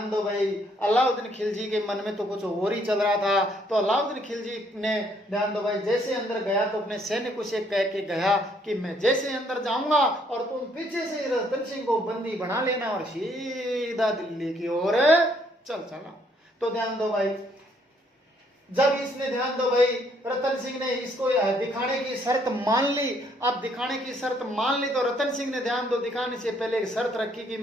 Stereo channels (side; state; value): both; normal; correlation 0.68